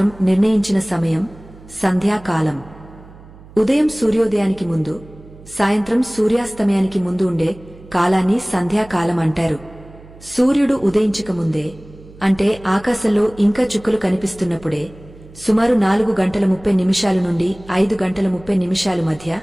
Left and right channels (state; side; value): noise; right; hum, 21 dB below the sound